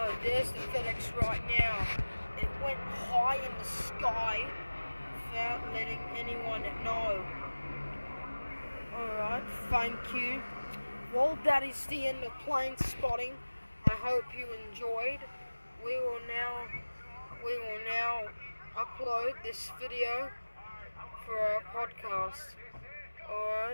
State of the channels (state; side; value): inverted; both; correlation -1.00